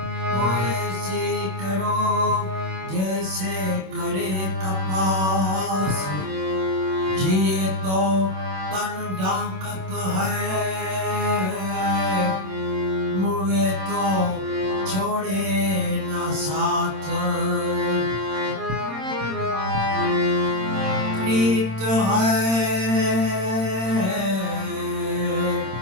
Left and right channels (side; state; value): left; late; 26 ms